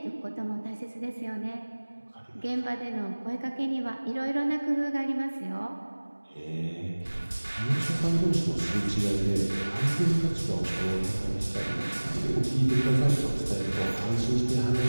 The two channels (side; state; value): both; inverted; correlation -1.00